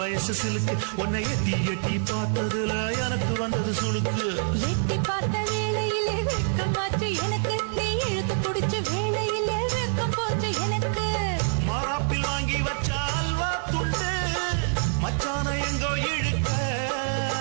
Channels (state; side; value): silent; left; 61 dB below the other